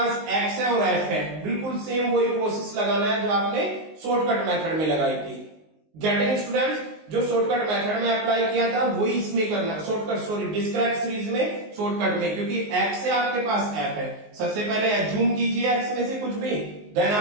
x है और f है. बिल्कुल सेम वही प्रोसेस लगाना है जो आपने शॉर्टकट मेथड में लगाई थी. Getting students? जो शॉर्टकट मेथड में अप्लाई किया था वही इसमें करना. डिस्क्रीट सीरीज में शॉर्टकट में, क्योंकि x से आपके पास f है. सबसे पहले एज्यूम कीजिए x में से कुछ भी, देन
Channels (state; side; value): late; left; 19 ms